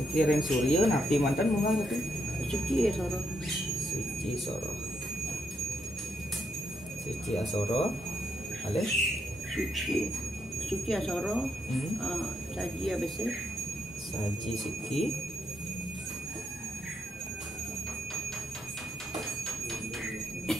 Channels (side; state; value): both; normal; correlation 0.80